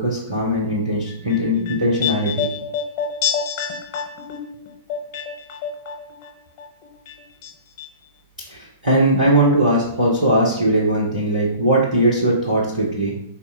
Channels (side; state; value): both; inverted; correlation -0.41